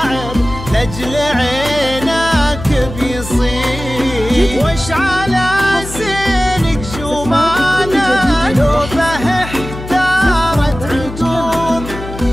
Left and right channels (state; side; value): noise; left; hum, 11 dB below the sound